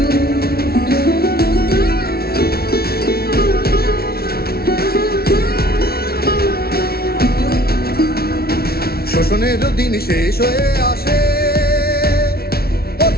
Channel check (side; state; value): right; late; 0.44 ms